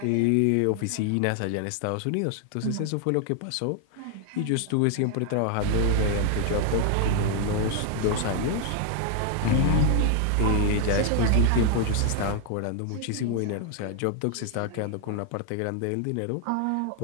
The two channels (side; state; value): both; different; correlation 0.00